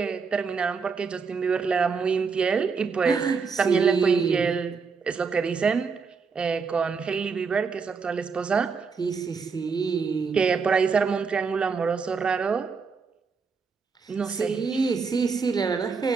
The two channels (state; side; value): quieter; left; 5.3 dB